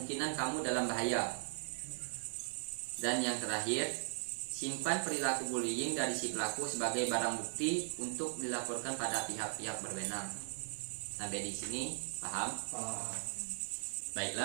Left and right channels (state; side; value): silent; left; digital silence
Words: kamu dalam bahaya. Dan yang terakhir, simpan perilaku bullying dari si pelaku sebagai barang bukti untuk dilaporkan pada pihak-pihak berwenang. Sampai di sini paham?